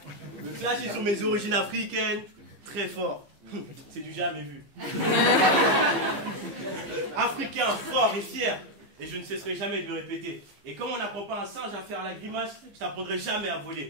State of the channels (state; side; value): late; left; 15 ms